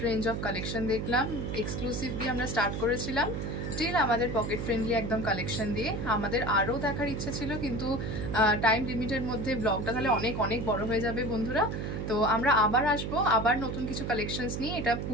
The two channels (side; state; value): right; noise; hum, 3 dB below the sound